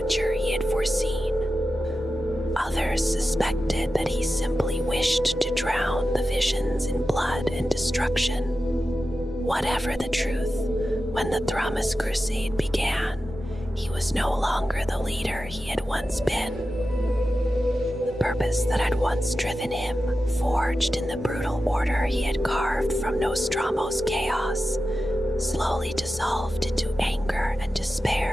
he had foreseen. Others suspected that he simply wished to drown the visions in blood and destruction. Whatever the truth, when the Thramas Crusade began, he was no longer the leader he had once been. The purpose that had once driven him, forged in the brutal order he had carved from Nostromo's chaos, slowly dissolved into anger and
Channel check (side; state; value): both; normal; correlation 0.92